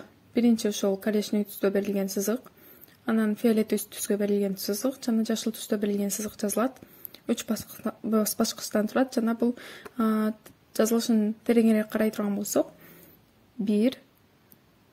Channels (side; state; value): both; identical; correlation 1.00